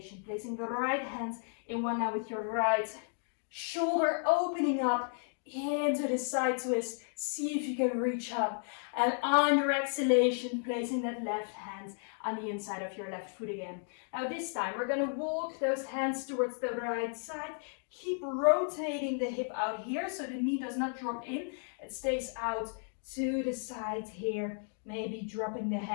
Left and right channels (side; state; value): right; silent; 55 dB below the other